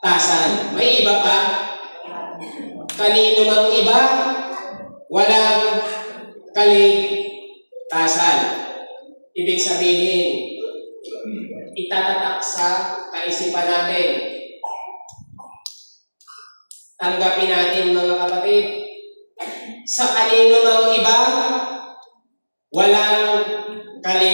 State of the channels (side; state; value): both; inverted; correlation -1.00